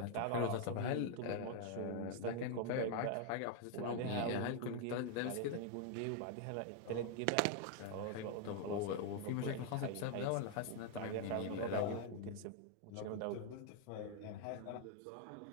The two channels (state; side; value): different; both; correlation 0.00